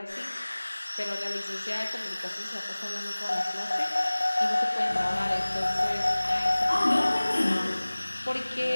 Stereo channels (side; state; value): both; inverted; correlation -1.00